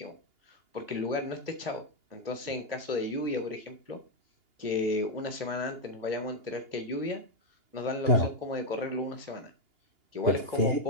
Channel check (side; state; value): left; late; 2.8 ms